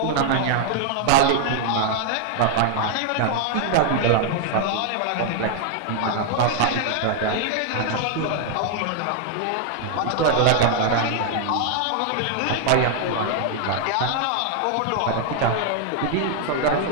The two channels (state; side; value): different; both; correlation 0.00